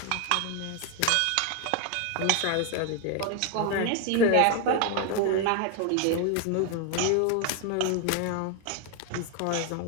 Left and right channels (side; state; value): both; different; correlation 0.01